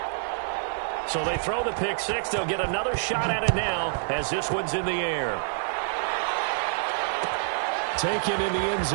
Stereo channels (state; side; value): silent; left; digital silence